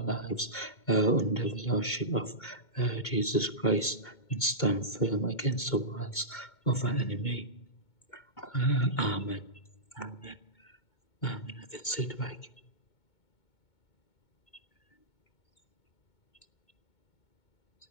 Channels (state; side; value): late; right; 2.2 ms